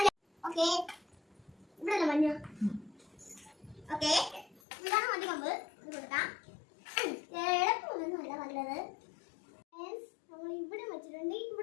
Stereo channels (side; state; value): right; drops out; at 4.6 s